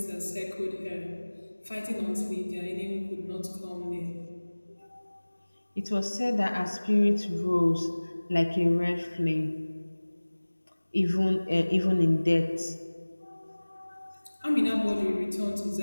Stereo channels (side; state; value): both; inverted; correlation -1.00